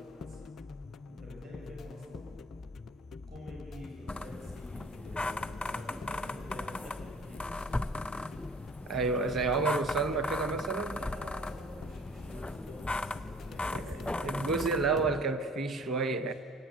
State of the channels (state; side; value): normal; both; correlation 0.50